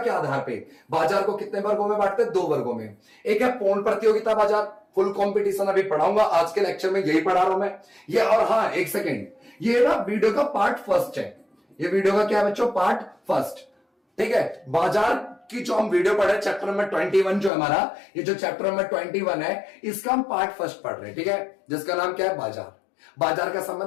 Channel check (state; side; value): drops out; right; at 17.5 s